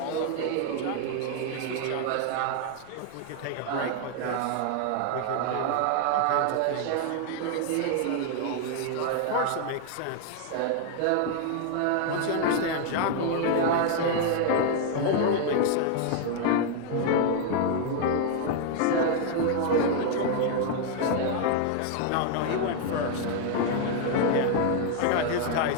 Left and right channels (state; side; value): different; both; correlation 0.00